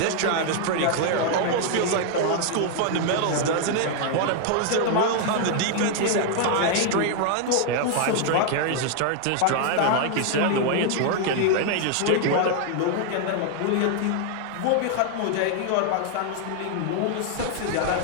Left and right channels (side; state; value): both; different; correlation 0.00